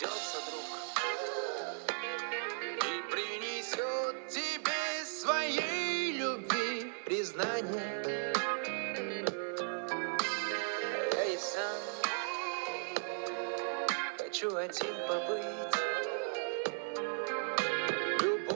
друг и принесет тебе своей любви признание. Я и сам хочу один побыть.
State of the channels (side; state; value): left; silent; 53 dB below the other